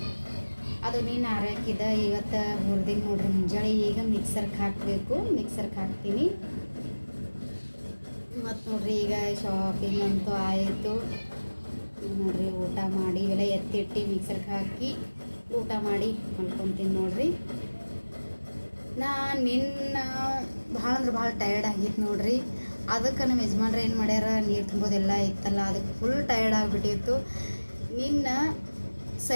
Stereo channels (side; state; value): both; inverted; correlation -1.00